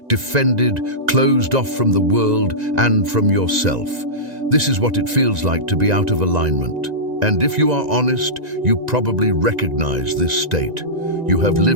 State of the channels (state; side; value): late; left; 1.9 ms